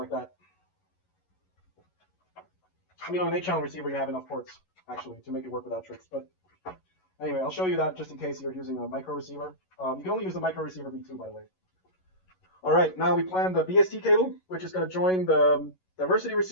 that. I mean, on an 8-channel receiver, you have enough ports actually to make it work without tricks. But anyway, I'll show you that just in case you're using a micro receiver. You can only use the micro receiver V2, by the way. All right, now we plan the BST cable, which is going to join the diversity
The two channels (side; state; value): right; late; 11 ms